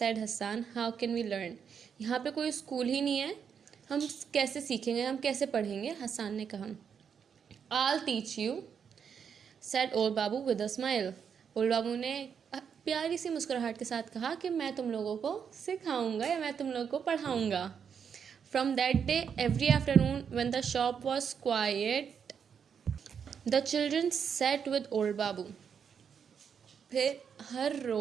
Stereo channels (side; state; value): left; quieter; 7.2 dB